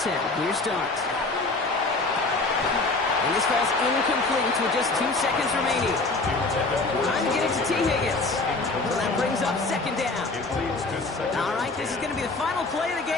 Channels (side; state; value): right; quieter; 3.4 dB